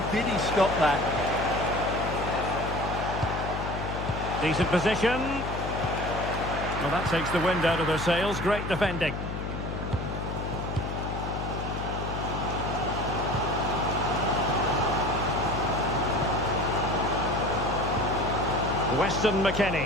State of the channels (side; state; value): left; noise; hum, 5 dB below the sound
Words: did he stop that? Decent position. Well, that takes the wind out of their sails. Great defending. Weston